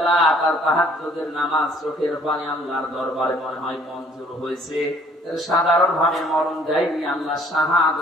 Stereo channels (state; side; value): normal; both; correlation 0.58